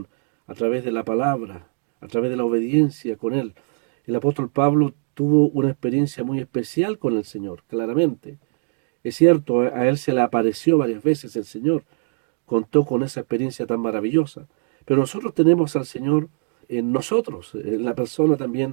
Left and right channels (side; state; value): left; silent; digital silence